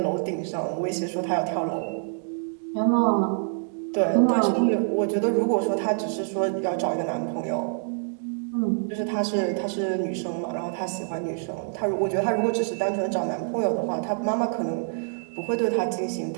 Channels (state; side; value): silent; left; 61 dB below the other